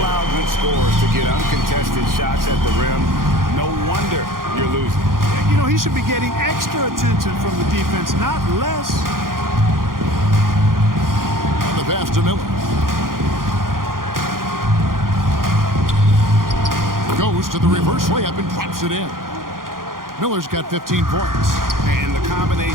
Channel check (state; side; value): late; left; 0.91 ms